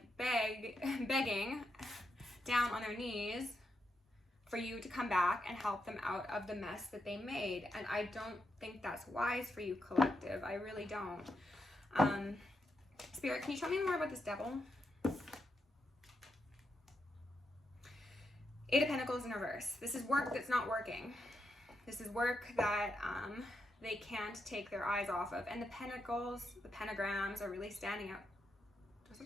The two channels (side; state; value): both; normal; correlation 0.83